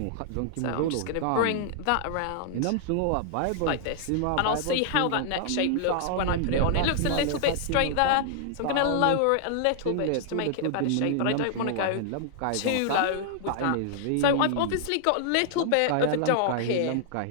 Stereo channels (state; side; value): different; both; correlation -0.01